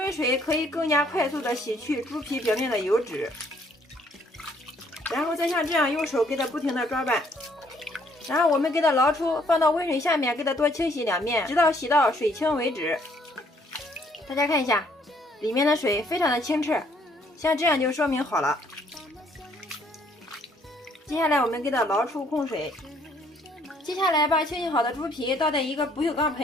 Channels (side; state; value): both; normal; correlation 0.65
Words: 水可以更加快速的洗去猪皮表面的油脂，然后再像这样用手给它不停的抓拌，然后我们给它捞出，放到温水下面给它多清洗2遍，直到洗到水清为止。大家看一下，里面的水非常的清澈，像这样就说明好了。接下来我们给它捞出控水，接下来把清洗好的猪皮倒在一个不锈钢